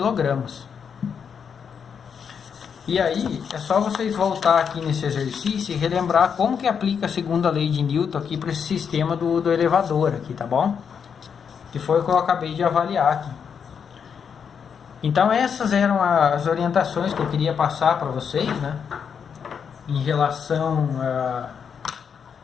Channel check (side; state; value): right; quieter; 7.0 dB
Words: E aí é só vocês voltar aqui nesse exercício e relembrar como que aplica a segunda lei de Newton aqui para esse sistema do elevador aqui, tá bom? Que foi o que eu acabei de avaliar aqui. Então essas eram as orientações que eu queria passar para vocês, né? Em relação